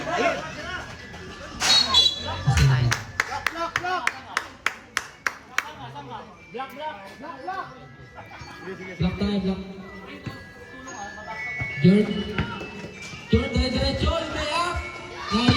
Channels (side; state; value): both; identical; correlation 1.00